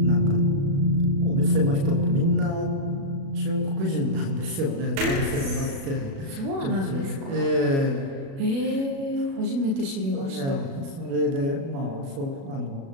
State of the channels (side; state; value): left; late; 36 ms